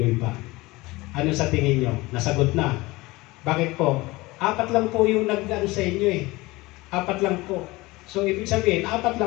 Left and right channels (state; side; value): quieter; right; 21.4 dB